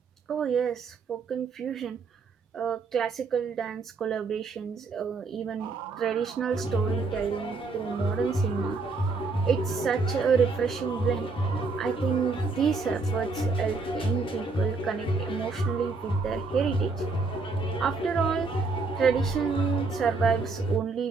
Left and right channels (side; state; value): left; quieter; 4.1 dB